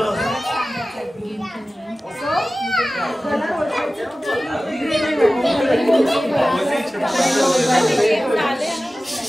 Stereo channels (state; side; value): normal; both; correlation 0.96